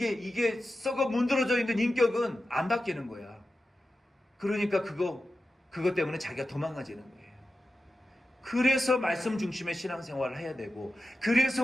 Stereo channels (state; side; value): normal; both; correlation 0.92